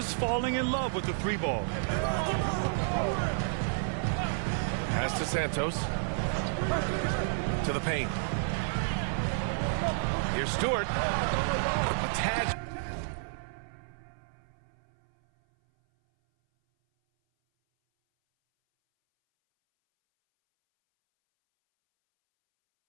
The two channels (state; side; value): silent; left; 57 dB below the other